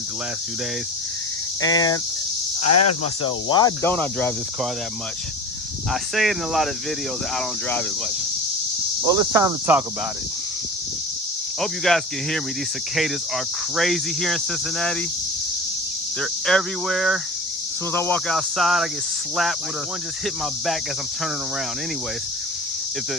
the last few days. And I asked myself, why don't I drive this car that much? I say it in a lot of videos that I don't drive it much. Well, it's time to talk about it. I hope you guys can hear me. These cicadas are crazy here in Cincinnati. They're everywhere. As soon as I walk outside, I get slapped with one just hit my back as I'm turning around. Anyways, if the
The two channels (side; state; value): both; normal; correlation 0.34